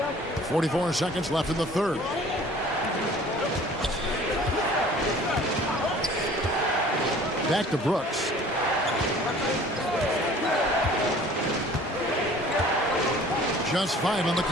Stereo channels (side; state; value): both; normal; correlation 0.49